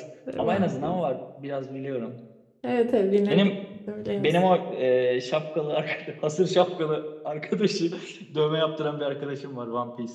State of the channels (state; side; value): identical; both; correlation 1.00